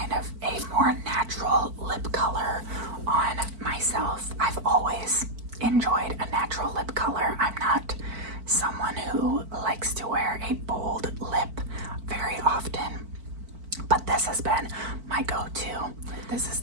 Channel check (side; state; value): left; late; 4.5 ms